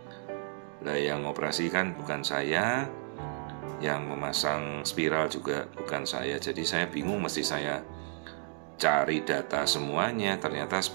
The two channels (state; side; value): silent; left; digital silence